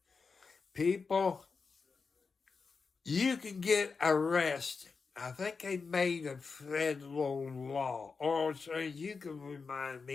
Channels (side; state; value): right; quieter; 4.9 dB